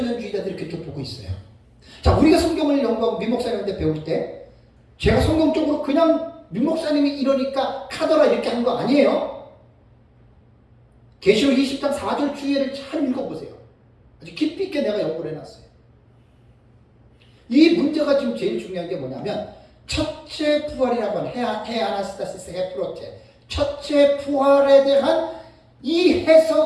그렇게 보고 있어요. 자, 우리가 성경을 연구하고 민목사님한테 배울 때 제가 성경적으로 그냥 민목사님이 이러니까 카더라 이렇게 한 거 아니에요. 계시록 20장 4절 주예를 잘 읽어보세요. 아주 깊이 있게 내가 연구를 해놨어요. 이 문제가 지금 제일 중요한 게 뭐냐면 첫째 부활이라고 하는 헤아나스타시스 헤프로테 첫째 부활에 대한 이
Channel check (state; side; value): identical; both; correlation 1.00